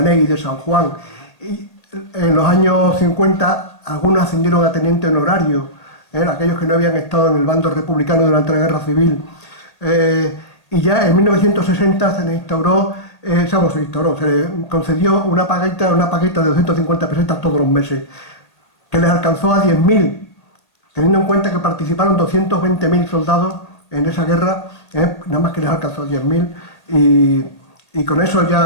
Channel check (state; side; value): late; right; 1.8 ms